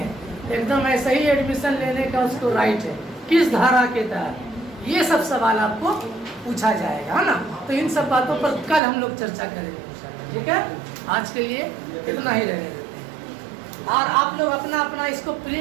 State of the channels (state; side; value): drops out; left; at 8.8 s